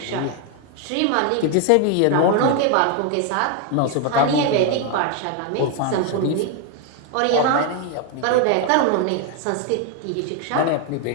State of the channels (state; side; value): different; both; correlation 0.01